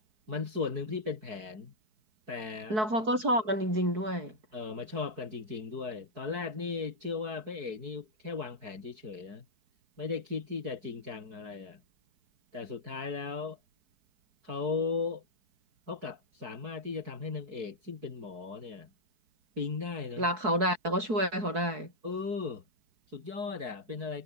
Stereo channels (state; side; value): late; left; 4.6 ms